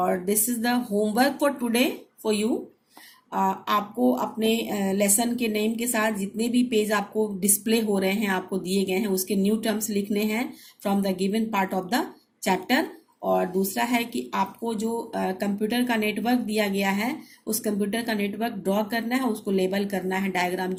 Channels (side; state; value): both; identical; correlation 1.00